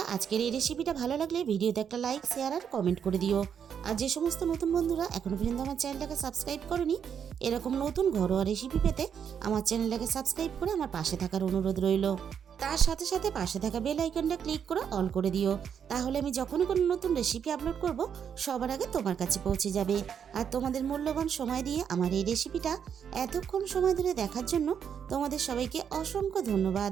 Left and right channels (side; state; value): left; quieter; 7.9 dB